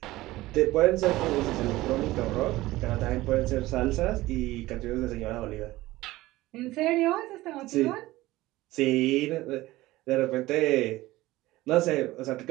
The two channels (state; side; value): quieter; left; 17.8 dB